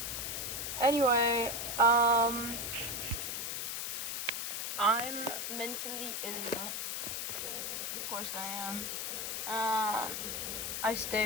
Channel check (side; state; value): left; noise; hiss, 2 dB below the sound